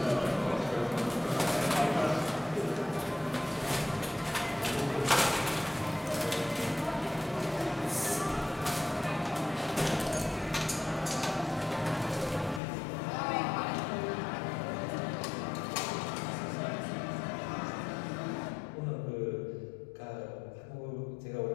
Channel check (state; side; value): drops out; right; at 12.6 s